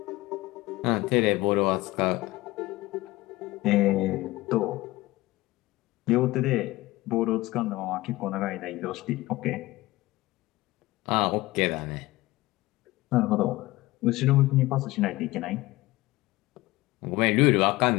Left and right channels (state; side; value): quieter; right; 19.3 dB